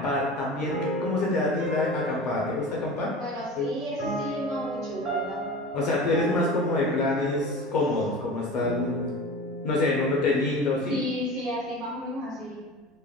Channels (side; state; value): both; normal; correlation 0.34